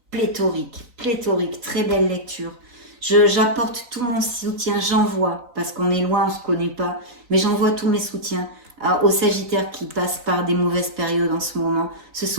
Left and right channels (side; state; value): left; late; 3.9 ms